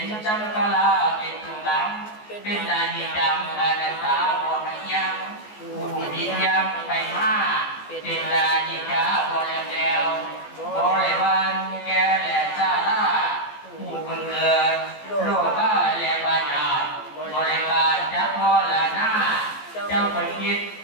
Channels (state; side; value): late; right; 14 ms